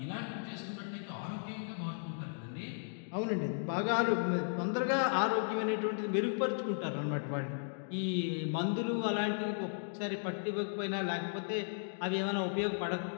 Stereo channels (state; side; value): silent; right; digital silence